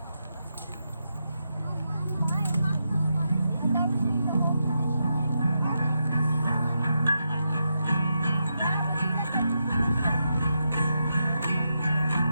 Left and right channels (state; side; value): inverted; both; correlation -0.85